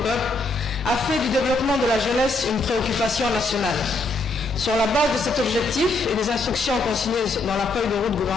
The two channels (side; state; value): right; quieter; 3.1 dB